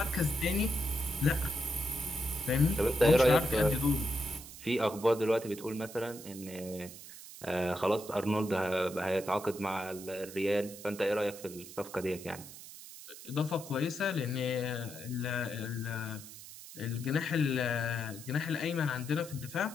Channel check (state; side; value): noise; right; hiss, 15 dB below the sound